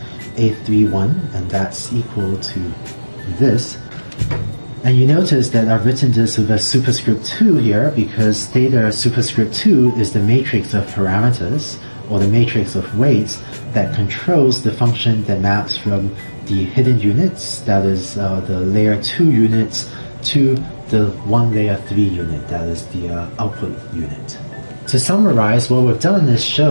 A31, and that's equal to this. And you notice that I've written this with a superscript 2 here, because theta superscript 2 is the matrix of parameters, or the matrix of weights, that controls the function that maps from the hidden units, that is the layer 2 units, to the one layer 3 unit, that is the output unit. To summarize, what we've done is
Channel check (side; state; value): both; inverted; correlation -1.00